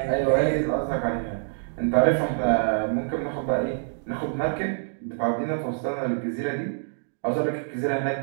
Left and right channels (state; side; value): silent; left; digital silence